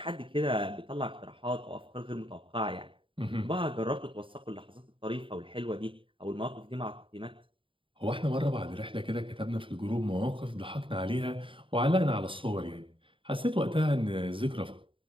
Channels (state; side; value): late; left; 0.25 ms